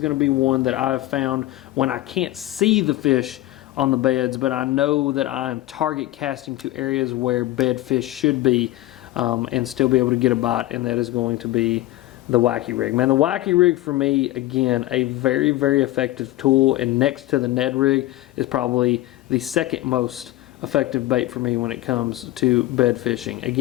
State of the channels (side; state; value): right; quieter; 16.4 dB